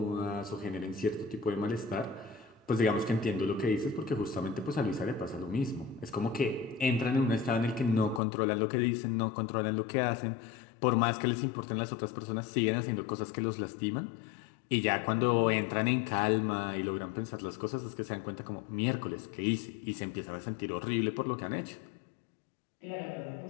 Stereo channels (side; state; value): right; drops out; at 8.2 s